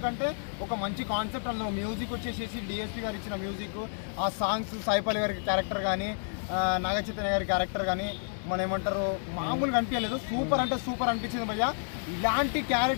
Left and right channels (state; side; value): silent; right; digital silence